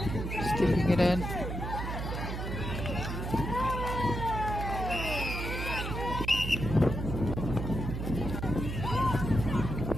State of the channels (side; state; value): right; noise; hum, 4 dB below the sound